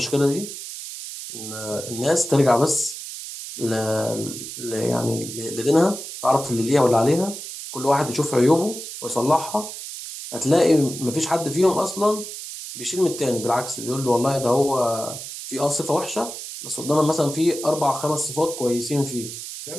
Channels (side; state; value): right; noise; hiss, 9 dB below the sound